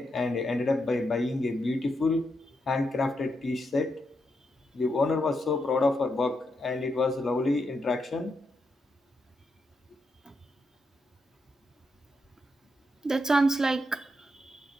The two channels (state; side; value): normal; both; correlation 0.83